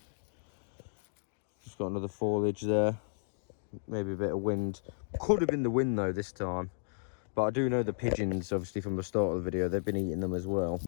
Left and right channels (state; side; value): silent; right; digital silence